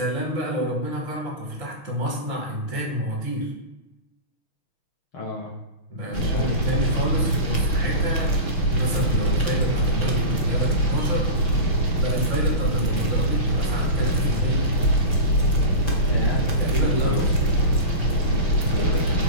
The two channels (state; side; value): late; right; 6.0 ms